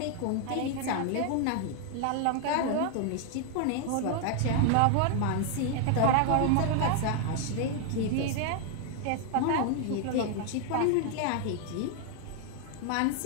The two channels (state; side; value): different; both; correlation 0.00